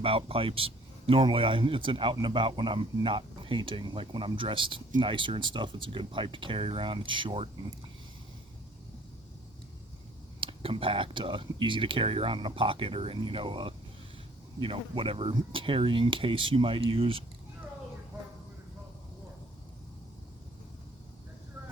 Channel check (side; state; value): both; normal; correlation 0.57